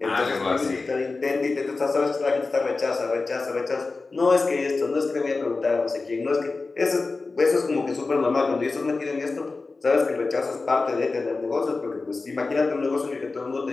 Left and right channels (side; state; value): right; quieter; 3.8 dB